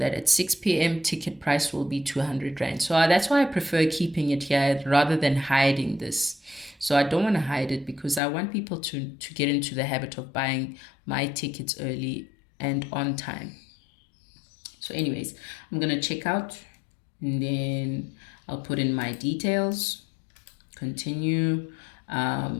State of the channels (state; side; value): drops out; right; at 8.2 s